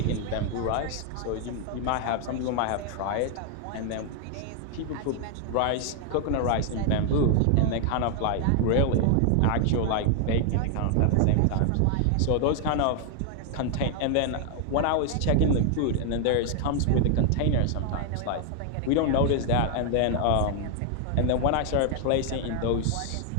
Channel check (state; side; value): different; both; correlation 0.00